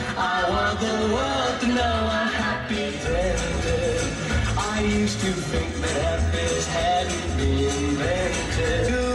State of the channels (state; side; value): identical; both; correlation 1.00